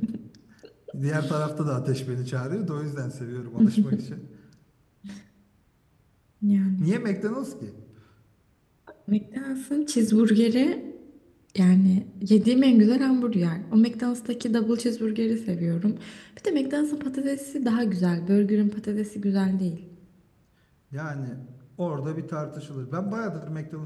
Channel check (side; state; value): both; identical; correlation 1.00